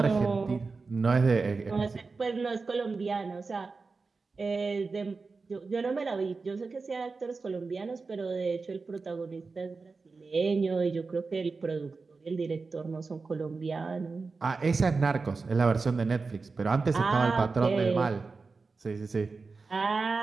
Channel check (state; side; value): quieter; left; 4.2 dB